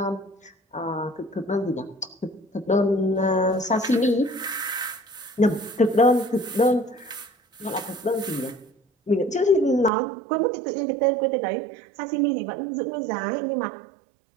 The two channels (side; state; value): left; drops out; at 9.9 s